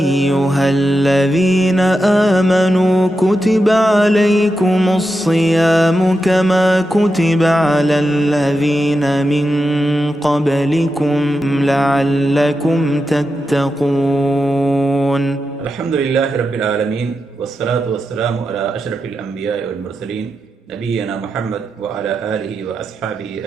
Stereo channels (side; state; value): both; normal; correlation 0.88